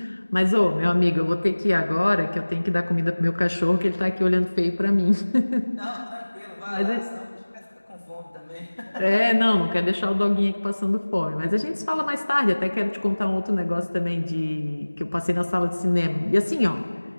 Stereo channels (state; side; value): inverted; both; correlation -1.00